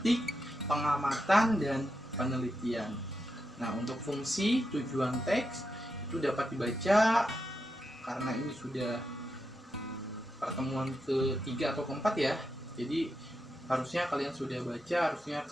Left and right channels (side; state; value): both; normal; correlation 0.86